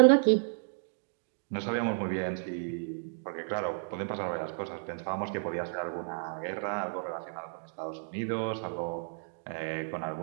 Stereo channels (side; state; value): left; silent; digital silence